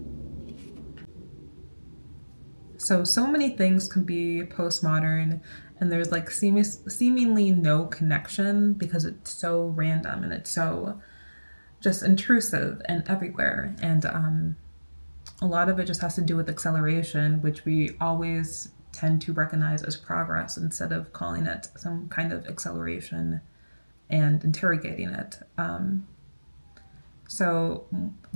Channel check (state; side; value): inverted; both; correlation -1.00